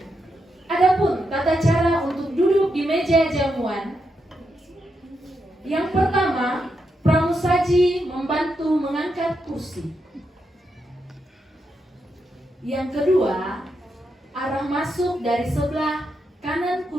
Adapun tata cara untuk duduk di meja jamuan. Yang pertama, pramusaji membantu mengangkat kursi. Yang kedua, arah masuk dari sebelah kanan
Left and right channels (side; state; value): both; normal; correlation 0.83